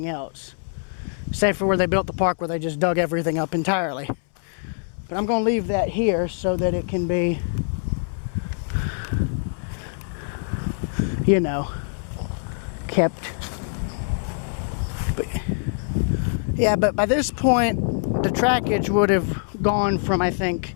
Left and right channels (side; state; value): right; silent; 63 dB below the other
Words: else. Save for where they built the park where they just dug everything up entirely. But I'm going to leave that here so that it can be, you know, kept. But, yeah, but by this point, the trackage would have gone from, I think,